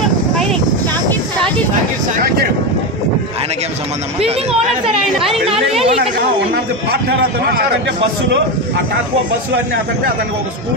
ఆయనకేం సంబంధం? బిల్డింగ్ ఓనర్ సార్ ఆయన. పార్ట్నర్ అతను బస్సులో ఆ టాక్వో బస్సులు అన్ని అతనికి ఒక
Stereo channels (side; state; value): both; normal; correlation 0.14